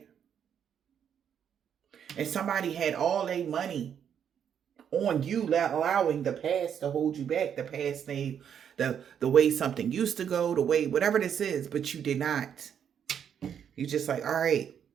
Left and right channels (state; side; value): quieter; left; 8.4 dB